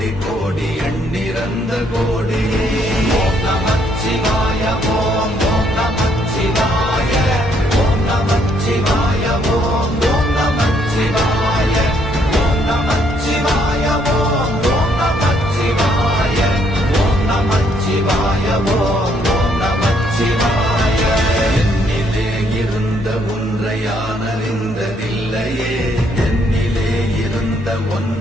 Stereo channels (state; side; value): normal; both; correlation 0.69